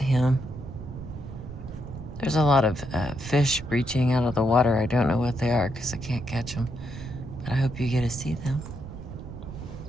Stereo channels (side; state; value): right; noise; rumble, 11 dB below the sound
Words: There's a lot of fish breaching out of the water. I don't know what they are because I can't catch them, but I hope you get to see them.